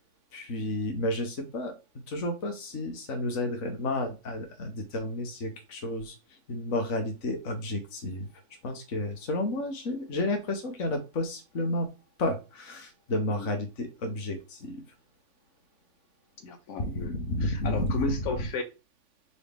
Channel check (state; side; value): late; right; 3.5 ms